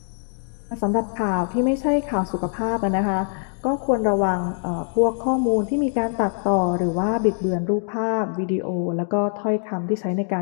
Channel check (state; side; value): silent; right; 62 dB below the other